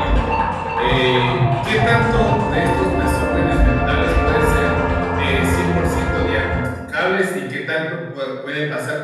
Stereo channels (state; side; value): identical; both; correlation 1.00